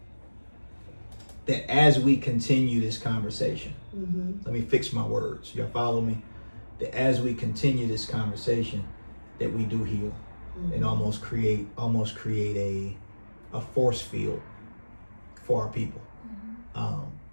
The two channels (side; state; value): both; inverted; correlation -1.00